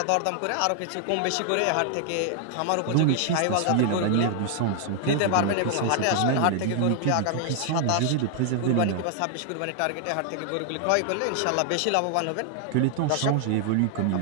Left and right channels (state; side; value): different; both; correlation 0.00